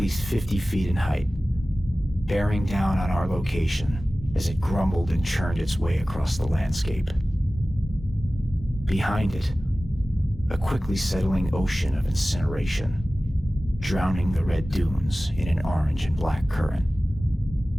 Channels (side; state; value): both; normal; correlation 0.97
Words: 50 feet in height, bearing down on our location as it grumbled and churned its way across the landscape. Behind it, a quickly settling ocean of incineration, drowning the red dunes in an orange and black current.